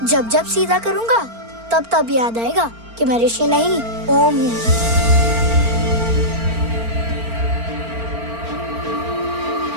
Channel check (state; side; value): late; left; 4.4 ms